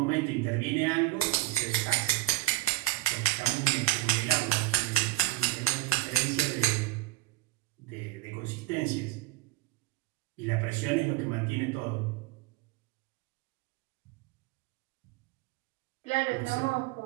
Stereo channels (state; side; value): quieter; left; 18.6 dB